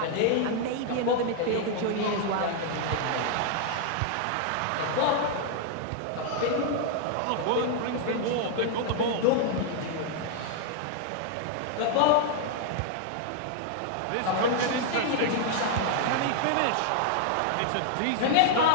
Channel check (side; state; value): both; different; correlation -0.01